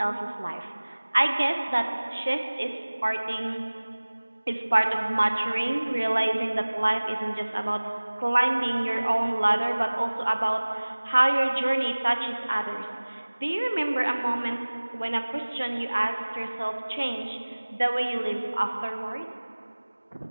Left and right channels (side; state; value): both; inverted; correlation -1.00